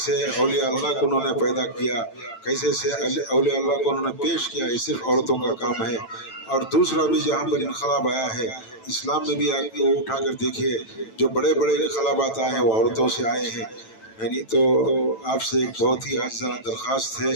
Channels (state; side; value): late; right; 9.0 ms